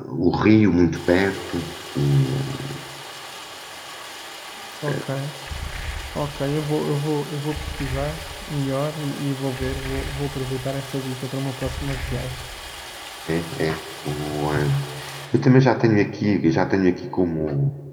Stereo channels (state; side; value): identical; both; correlation 1.00